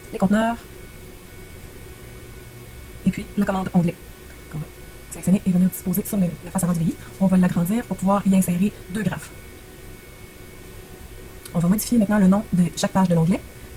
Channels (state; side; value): identical; both; correlation 1.00